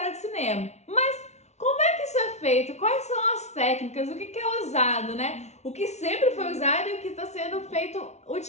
de cinema. Mas como é que isso é feito? Quais são as técnicas? O que é usado, né? O que sempre foi usado e o que está sendo feito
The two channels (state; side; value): late; right; 0.32 ms